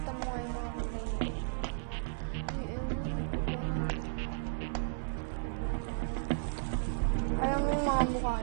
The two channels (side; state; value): left; silent; 55 dB below the other